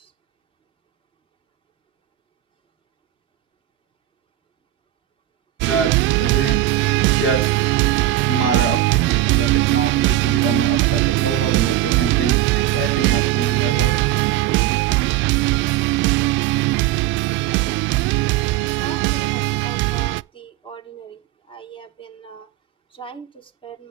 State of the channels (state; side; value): quieter; left; 13.7 dB